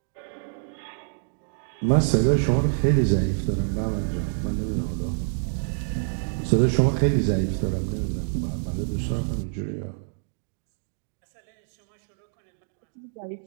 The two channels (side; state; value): left; silent; digital silence